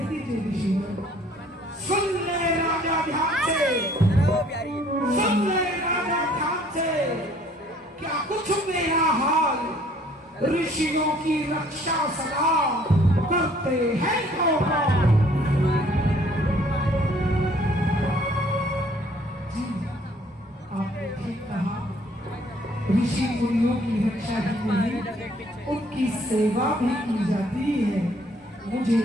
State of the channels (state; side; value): normal; both; correlation 0.59